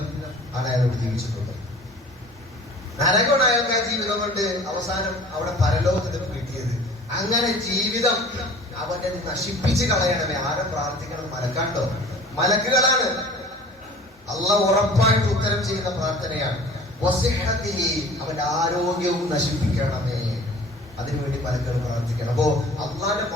ആണ് അയാളോട് ജീവിച്ചിട്ടുള്ളത്. നരകമാണ് അയാൾക്ക് ആ ജീവിതം കൊണ്ട് അവസാനം അവിടെ പരലോകത്തിൽ കിട്ടിയത്. അങ്ങനെ ജീവിതം അവന്റെ നശിപ്പിച്ച് കളയണമേ. ആരും പ്രാർത്ഥിക്കണം? മലക്കാണ്ടോ? മലക്കുകളാണ്. അള്ളാഹ് ഉറപ്പായിട്ട് ഉത്തരം ചെയ്യുന്ന പ്രാർത്ഥനയാണ്. അവന്റെ ആരോഗ്യവും നശിപ്പിക്കണമേ, അതിനുവേണ്ടി മലക്കുകൾ പ്രാർത്ഥിക്കണം. അപ്പോ അള്ളാന്റെ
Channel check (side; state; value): both; normal; correlation 0.45